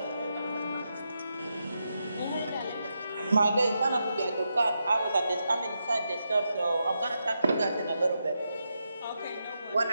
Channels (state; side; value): inverted; both; correlation -0.85